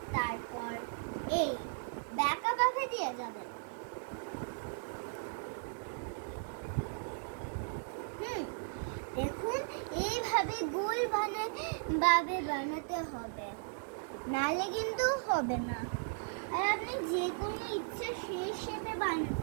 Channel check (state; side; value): silent; left; digital silence